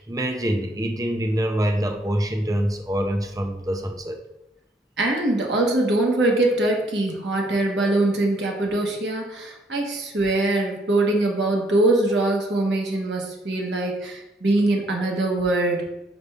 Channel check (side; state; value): both; normal; correlation 0.67